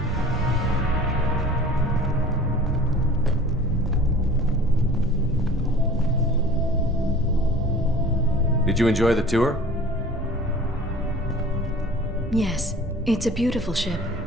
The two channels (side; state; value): both; normal; correlation 0.44